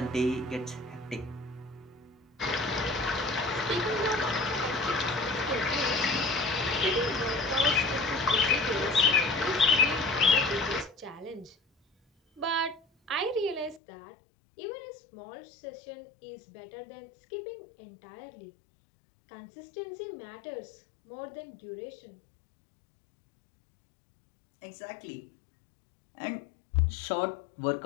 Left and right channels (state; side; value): drops out; right; at 13.8 s